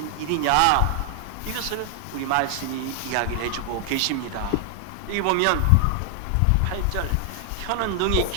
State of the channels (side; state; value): both; different; correlation 0.00